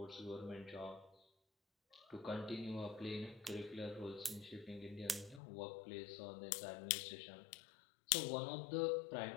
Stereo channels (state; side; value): drops out; right; at 5.4 s